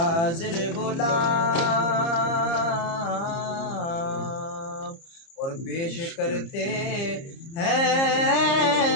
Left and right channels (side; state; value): right; late; 30 ms